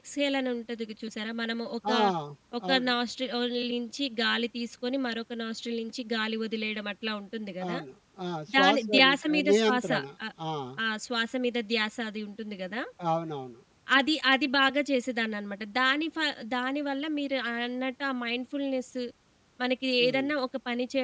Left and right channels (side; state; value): both; identical; correlation 1.00